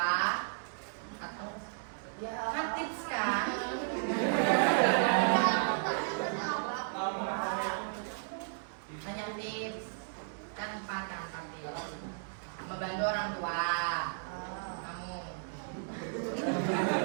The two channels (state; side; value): silent; left; 55 dB below the other